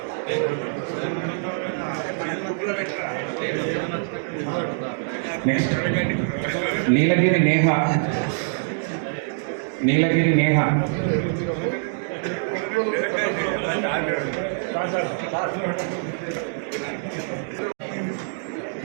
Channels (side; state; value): left; silent; digital silence